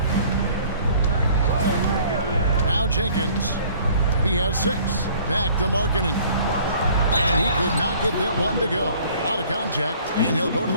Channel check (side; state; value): both; inverted; correlation -0.54